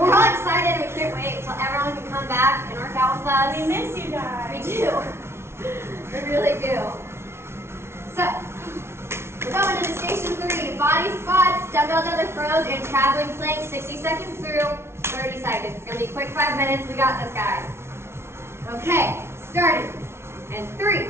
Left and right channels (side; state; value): left; late; 0.12 ms